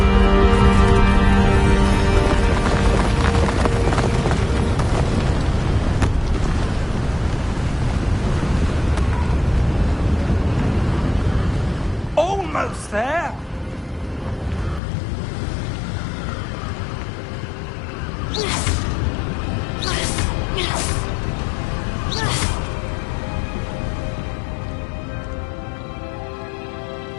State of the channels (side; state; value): right; drops out; at 14.8 s